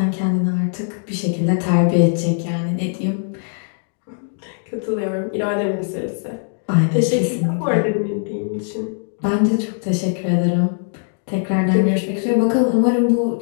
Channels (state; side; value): silent; right; digital silence